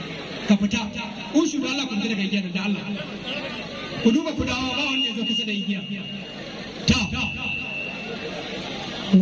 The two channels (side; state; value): both; identical; correlation 1.00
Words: ka fita ushu da Allah ku fita daga igiyar da Allah ku duba ku dawo ba wanda ya zo kusa da igiya ta